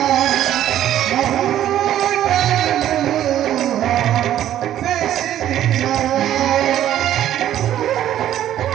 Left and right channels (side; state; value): left; quieter; 11.8 dB